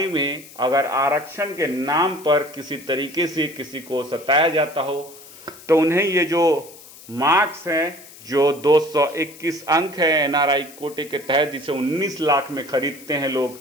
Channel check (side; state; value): left; noise; hiss, 19 dB below the sound